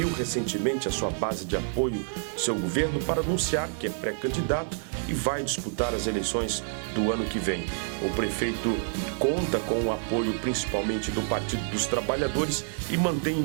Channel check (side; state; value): left; silent; 59 dB below the other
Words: recentemente a sua base de apoio do seu governo para anunciar que é pré-candidato e vai disputar as eleições do ano que vem. O prefeito conta com o apoio principalmente do Partido dos Trabalhadores e mantém